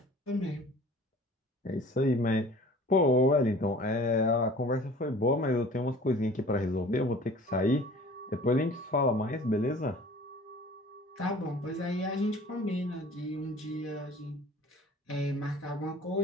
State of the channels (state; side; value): normal; both; correlation 0.46